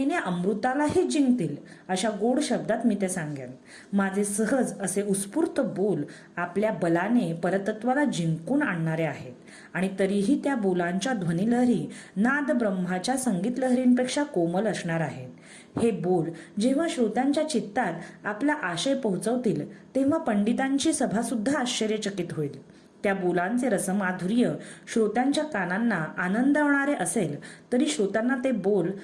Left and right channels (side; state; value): both; identical; correlation 1.00